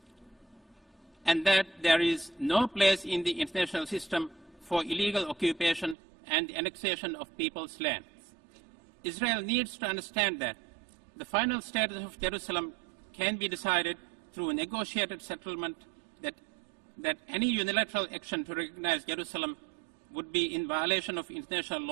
and that there is no place in the international system for illegal occupation and the annexation of people's lands. Israel needs to understand that the final status of Jerusalem can be decided through a negotiated settlement, that any unilateral action to recognize Jerusalem would be in violation of international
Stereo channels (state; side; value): drops out; left; at 6.0 s